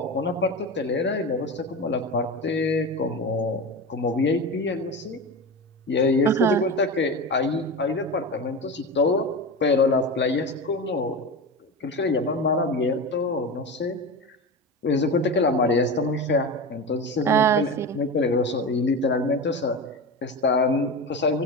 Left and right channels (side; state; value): both; normal; correlation 0.24